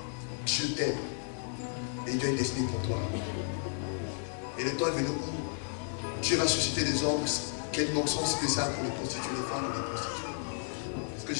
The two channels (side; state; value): right; silent; digital silence